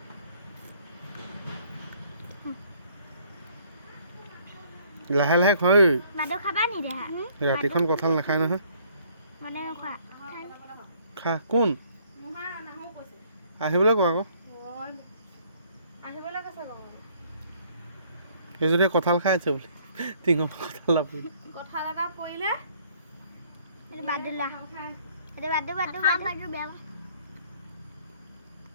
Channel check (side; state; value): both; inverted; correlation -0.62